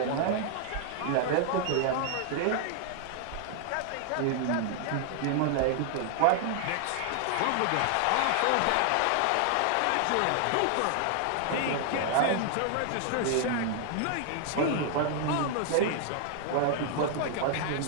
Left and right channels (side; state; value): both; different; correlation 0.00